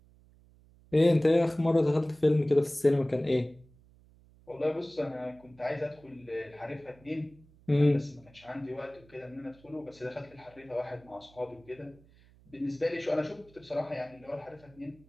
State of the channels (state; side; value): noise; right; hum, 27 dB below the sound